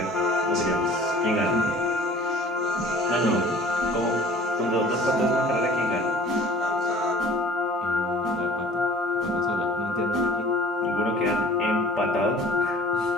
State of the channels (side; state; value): both; normal; correlation 0.47